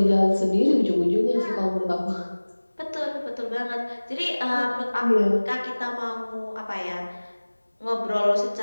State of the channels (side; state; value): both; inverted; correlation -1.00